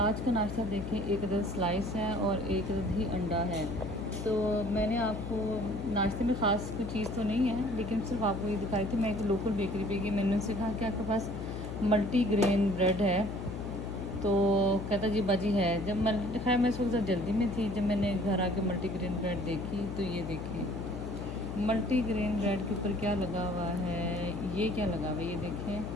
का नाश्ता देखें, एक अदद स्लाइस है और एक अदद ही अंडा है। तो मैंने आपको नाश्ते में ख़ास कोई चीज़ तो नहीं है, लेकिन सिर्फ आपको ये दिखाई थी। मैं एक लोकल बेकरी पे गई, मैंने उनसे कहा कि आपके पास मल्टी ग्रेन ब्रेड है? तो कहता जी बाजी है। जब खैर मैं इस वक्त जल्दी में थी, जब मैंने घर आके मल्टी ग्रेन ब्रेड देखी तो ये देखें मल्टी ग्रेन ब्रेड के ऊपर क्या लगा हुआ है। ये क्या लगा हुआ है, ये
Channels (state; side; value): noise; left; hum, 7 dB below the sound